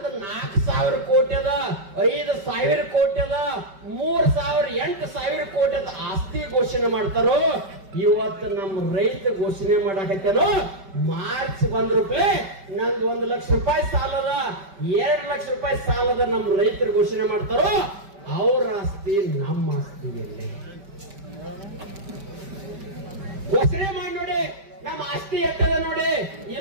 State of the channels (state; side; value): late; left; 5.2 ms